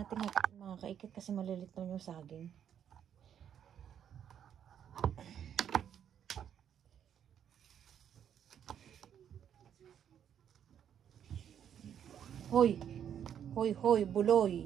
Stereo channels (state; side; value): quieter; left; 9.1 dB